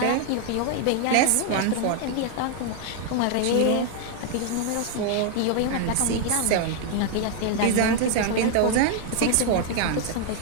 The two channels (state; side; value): different; both; correlation 0.00